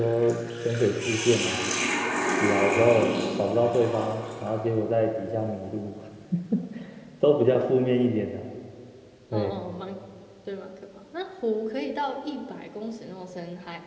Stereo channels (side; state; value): both; identical; correlation 1.00